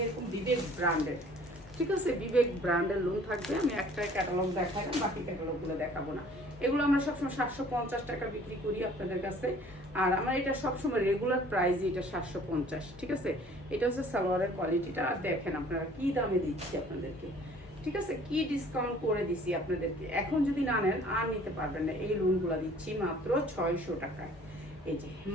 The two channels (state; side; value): normal; both; correlation 0.53